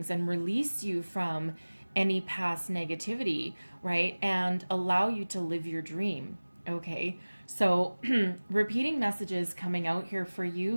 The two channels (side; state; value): both; inverted; correlation -1.00